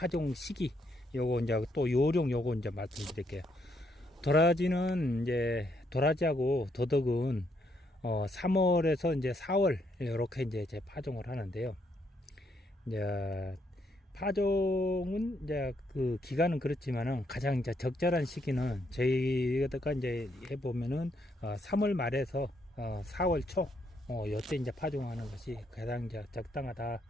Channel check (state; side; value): normal; both; correlation 0.74